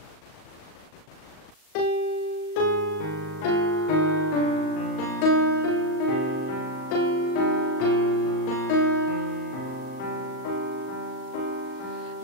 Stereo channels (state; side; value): late; right; 38 ms